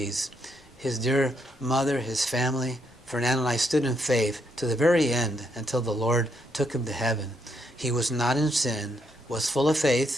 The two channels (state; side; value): normal; both; correlation 0.76